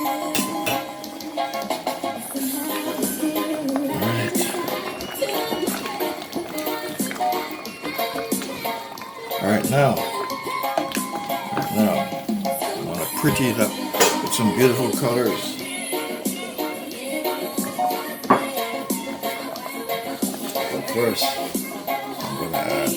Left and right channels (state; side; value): identical; both; correlation 1.00